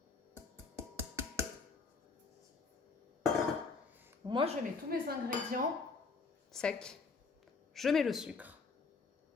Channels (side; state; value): right; quieter; 4.5 dB